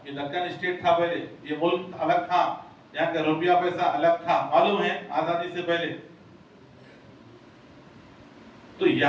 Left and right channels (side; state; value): both; identical; correlation 1.00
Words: یہ دکن اسٹیٹ تھا پہلے، یہ ملک الگ تھا، یہاں کا روپیہ پیسہ الگ تھا، معلوم ہے آزادی سے پہلے. تو